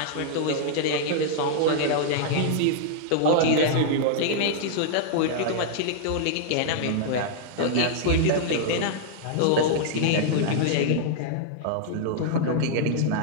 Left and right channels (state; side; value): different; both; correlation -0.01